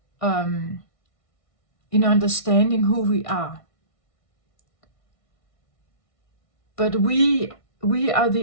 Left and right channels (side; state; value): right; late; 1.6 ms